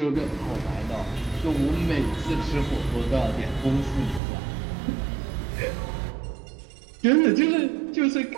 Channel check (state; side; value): drops out; left; at 4.2 s